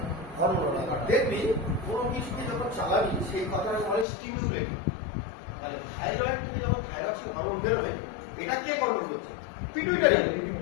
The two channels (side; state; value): right; drops out; at 4.0 s